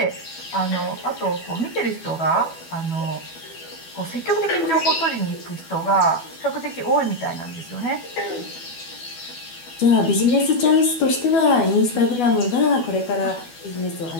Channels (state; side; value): late; right; 12 ms